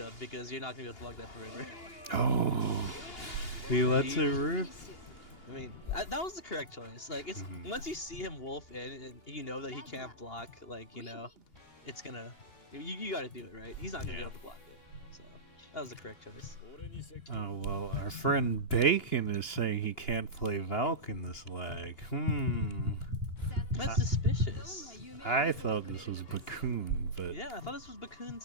up because you're not gonna be able to block that forever. Oh, he lets it rip. I mean, that was the correct choice. Like, it's once you see him wolf in and you know that he can't block, like, you know, it's gonna, you gotta do it, right? He's not gonna be able to block it. So, that was the correct choice. Oh, well, our friend Bacon is saying he can't play Valk in this lag. That's suspicious. I thought this was Bakun, but... Yeah, I thought this was Bakun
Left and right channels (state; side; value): late; right; 2.8 ms